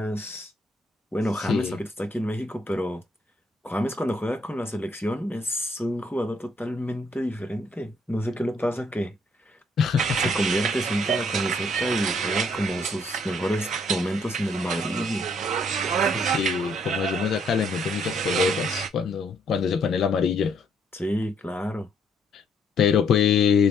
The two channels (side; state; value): both; normal; correlation 0.68